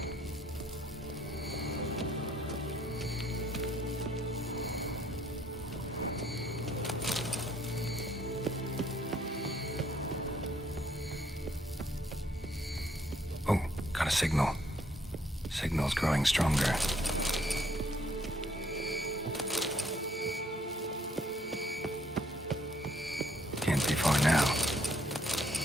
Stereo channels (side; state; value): both; normal; correlation 0.66